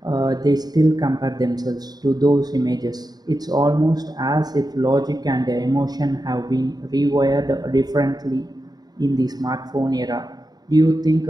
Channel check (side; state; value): left; late; 0.19 ms